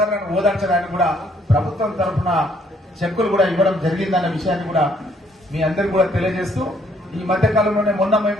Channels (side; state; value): both; normal; correlation 0.66